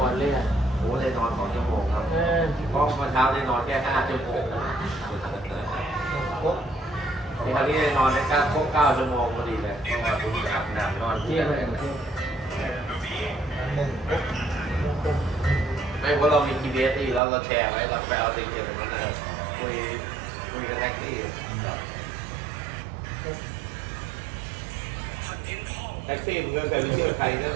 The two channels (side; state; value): left; drops out; at 17.2 s